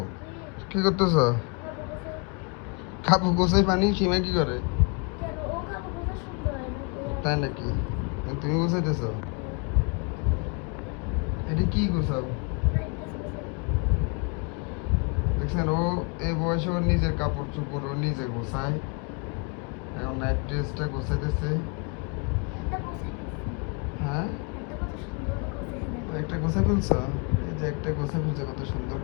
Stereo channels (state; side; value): quieter; right; 32.0 dB